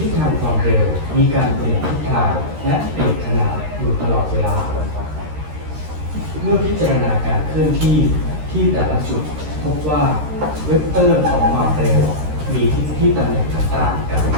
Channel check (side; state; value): left; late; 13 ms